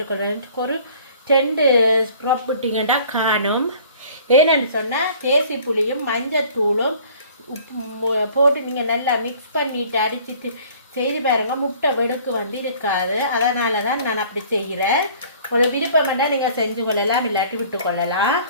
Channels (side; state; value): both; inverted; correlation -0.52